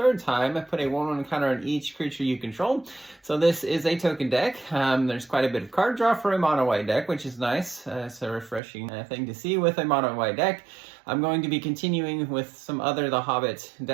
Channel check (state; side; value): drops out; left; at 8.6 s